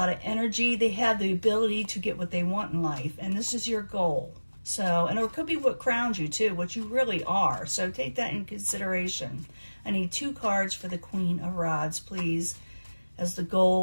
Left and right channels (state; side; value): inverted; both; correlation -1.00